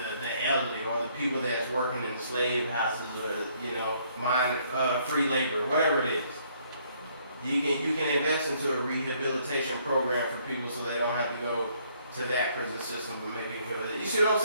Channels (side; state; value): both; inverted; correlation -0.66